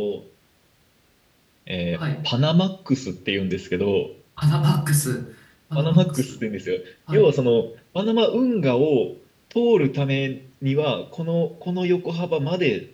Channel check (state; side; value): identical; both; correlation 1.00